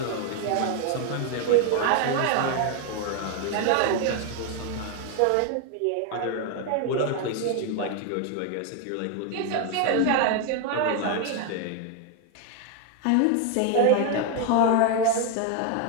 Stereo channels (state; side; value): different; both; correlation 0.01